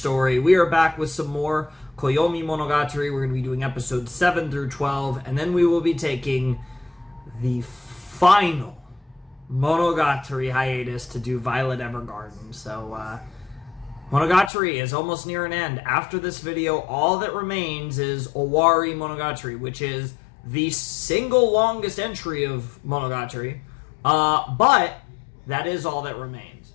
We are back with some more Koyomimonogatari. We're going to be doing episodes 7 through 12, and then we will be taking the final Monogatari hiatus to do Violet Evergarden. So, Monogatari is almost near an end. After this video, all that remains is Owari Monogatari, which is the single longest entry of Monogatari. But that is all that remains.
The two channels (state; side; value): drops out; right; at 14.5 s